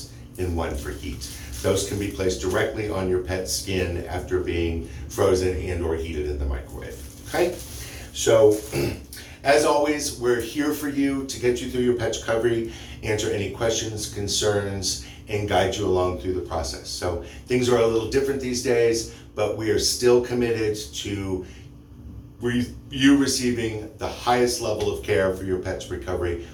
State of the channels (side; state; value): both; identical; correlation 1.00